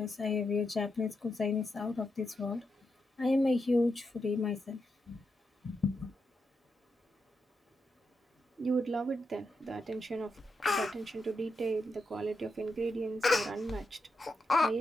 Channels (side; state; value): both; normal; correlation 0.85